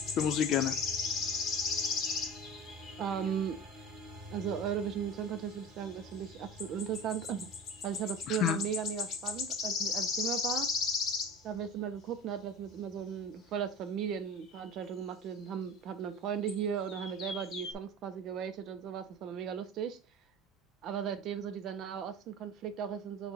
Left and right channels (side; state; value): both; normal; correlation 0.35